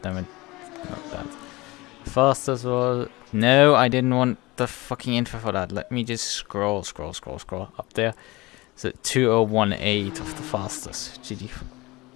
damn it, not that. The fastest was, no, I didn't want the fucking info for that. Let me just scroll up there. So 2018 of the fastest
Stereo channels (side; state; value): right; quieter; 21.7 dB